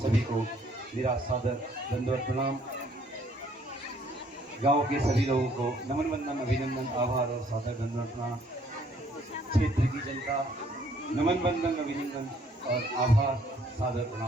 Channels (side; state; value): both; normal; correlation 0.63